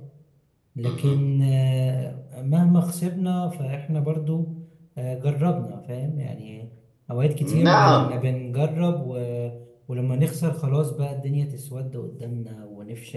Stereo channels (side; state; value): both; identical; correlation 1.00